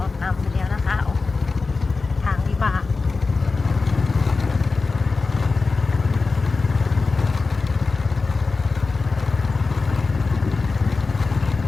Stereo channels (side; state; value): right; quieter; 4.1 dB